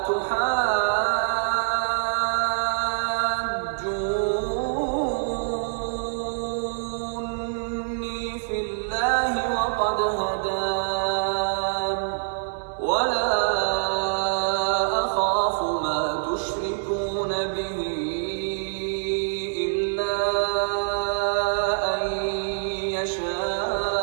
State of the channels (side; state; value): left; silent; digital silence